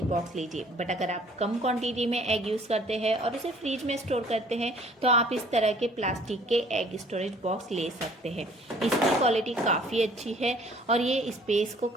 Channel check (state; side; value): normal; both; correlation 0.56